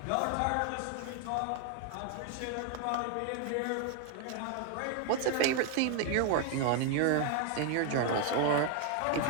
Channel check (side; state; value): both; different; correlation 0.01